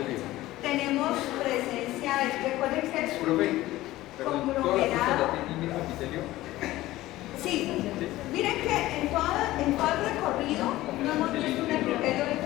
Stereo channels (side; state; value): right; quieter; 16.7 dB